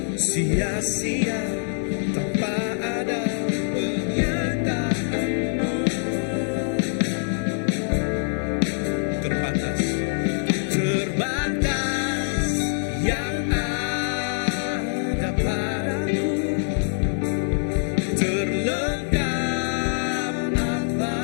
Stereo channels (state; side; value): silent; right; digital silence